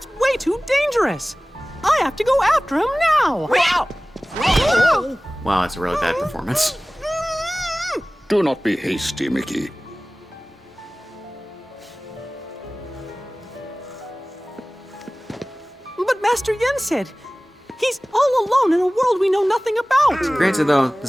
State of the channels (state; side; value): normal; both; correlation 0.98